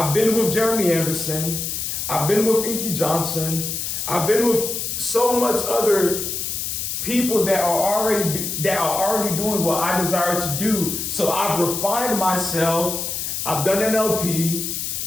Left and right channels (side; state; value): left; noise; hiss, 3 dB below the sound